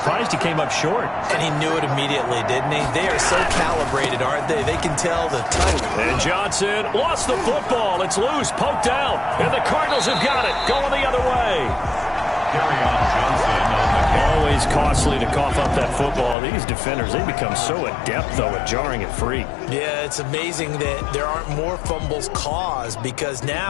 he came up short. And he knew it immediately, didn't he? They are so calibrated, aren't they? They can tell the type. And Johnson lost the football. It's loose, poked out. And the Cardinals have got it, going the other way. Carry on Johnson on the Always costly to cough up that football. These defenders, they become so adept, though, at jarring it free. Yeah, it's amazing that there aren't more fumbles caused because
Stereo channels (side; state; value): right; drops out; at 16.4 s